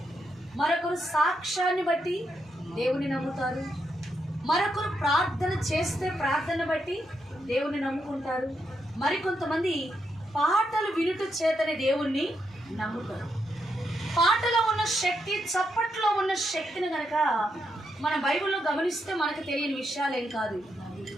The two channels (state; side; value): normal; both; correlation 0.81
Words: మరొకరు సాక్ష్యాన్ని బట్టి దేవుని నమ్ముతారు, మరొకరు ప్రార్థన చేస్తే ప్రార్థన బట్టి దేవుని నమ్ముకుంటారు, మరికొంతమంది పాటలు వినుట చేతనే దేవుణ్ణి నమ్ముతారు. పాటలో ఉన్న శక్తి, చప్పట్లో ఉన్న శక్తిని గనక మన బైబిల్లో గమనిస్తే మనకు తెలియని విషయాలేం కాదు.